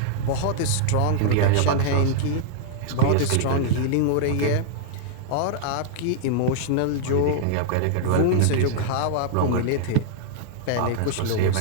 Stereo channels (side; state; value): both; different; correlation -0.01